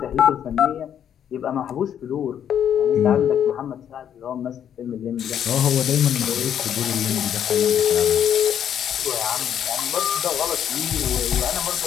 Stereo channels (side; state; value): right; quieter; 9.4 dB